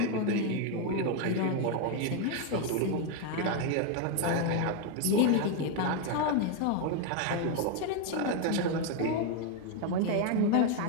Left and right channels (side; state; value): both; different; correlation 0.01